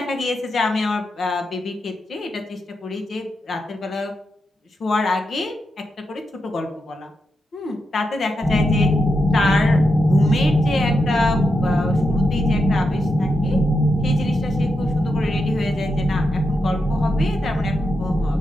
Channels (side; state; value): both; normal; correlation 0.86